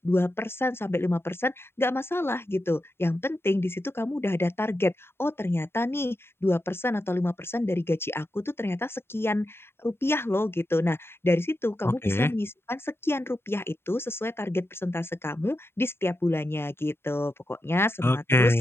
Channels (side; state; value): right; late; 0.11 ms